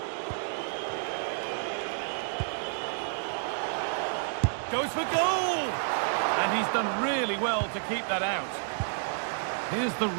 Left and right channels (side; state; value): left; silent; digital silence